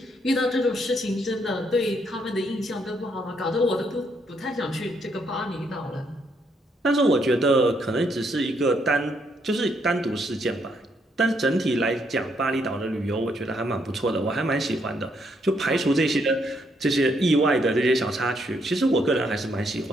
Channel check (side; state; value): both; normal; correlation 0.74